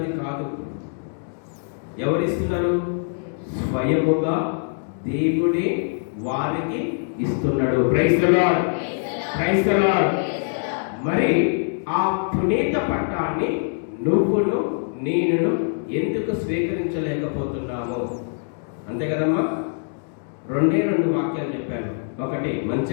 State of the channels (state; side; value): silent; right; digital silence